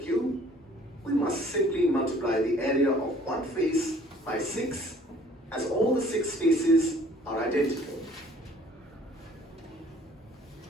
we must simply multiply the area of one face by 6, as all the 6 faces are identical.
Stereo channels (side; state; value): both; normal; correlation 0.55